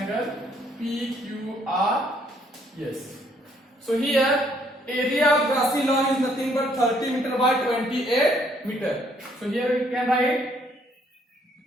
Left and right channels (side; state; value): both; normal; correlation 0.67